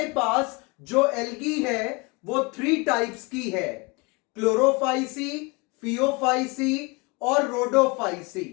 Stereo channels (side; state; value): right; quieter; 27.4 dB